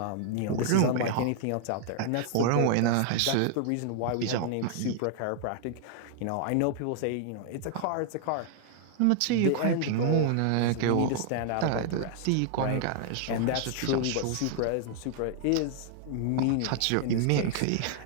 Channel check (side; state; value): both; different; correlation 0.00